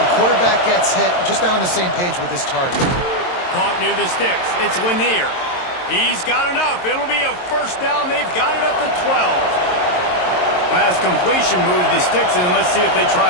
quarterback gets hit, just not on the same page with his target. Caught near the sticks. It's Lanier. He's got enough. It'll be a first down. They've got it at the 12. Pass completion moves the sticks, and let's see if they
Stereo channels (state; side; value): late; right; 22 ms